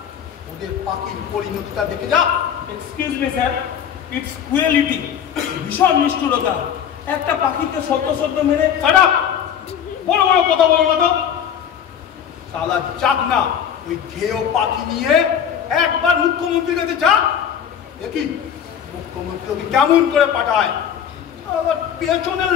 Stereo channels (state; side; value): quieter; right; 8.6 dB